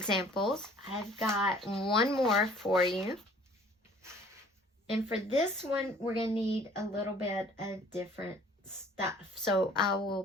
I've got one more for you. And for this one, we're going to need a little bit of different stuff. So I will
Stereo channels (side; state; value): both; normal; correlation 0.53